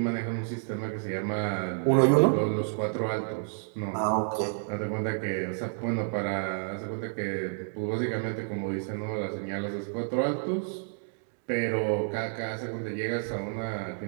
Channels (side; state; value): left; silent; digital silence